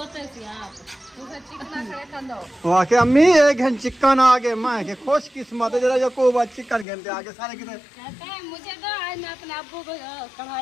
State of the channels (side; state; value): right; drops out; at 6.9 s